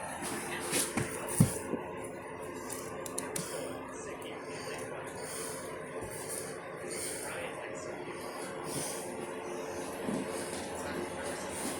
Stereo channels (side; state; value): both; identical; correlation 1.00